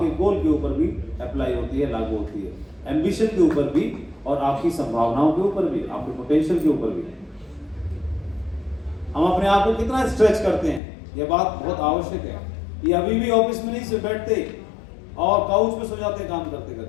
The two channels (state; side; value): drops out; right; at 10.8 s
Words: गोल के ऊपर भी अप्लाई होती है, लागू होती है, एम्बिशन के ऊपर भी और आपकी संभावनाओं के ऊपर भी, आपके पोटेंशियल के ऊपर भी। हम अपने आप को कितना स्ट्रेच करते हैं, यह बात बहुत आवश्यक है। ये अभी भी ऑफिस में नहीं से बैठते और काउच पे सो जाते हैं काम करते